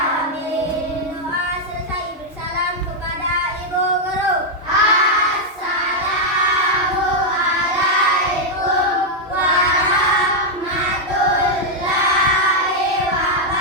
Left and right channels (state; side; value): normal; both; correlation -0.01